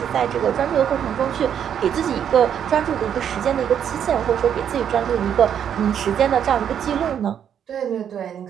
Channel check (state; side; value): quieter; left; 8.8 dB